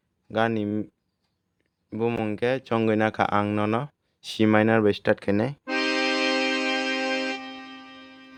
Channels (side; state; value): both; identical; correlation 1.00